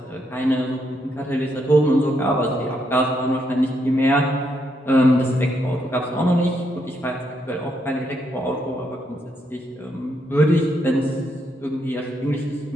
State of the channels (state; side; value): normal; both; correlation 0.77